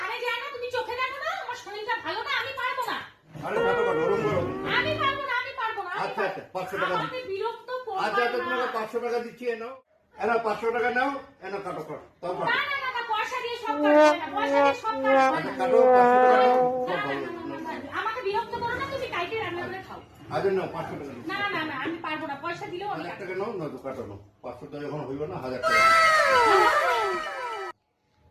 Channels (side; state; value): both; identical; correlation 1.00